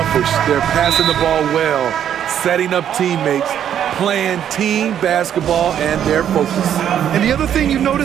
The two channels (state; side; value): quieter; left; 9.7 dB